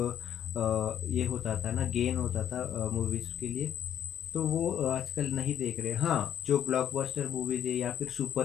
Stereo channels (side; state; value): right; quieter; 9.7 dB